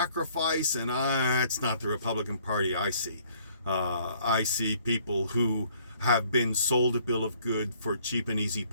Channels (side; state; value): both; inverted; correlation -0.61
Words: and it's not the Republican Party I see. I see people who have been sold a bill of good for cheap and easy